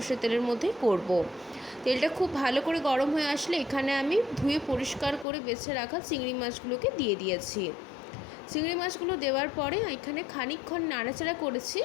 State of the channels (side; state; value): right; drops out; at 5.2 s